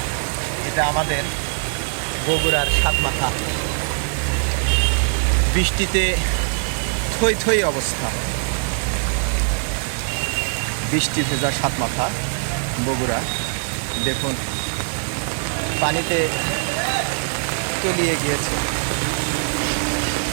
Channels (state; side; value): silent; left; 64 dB below the other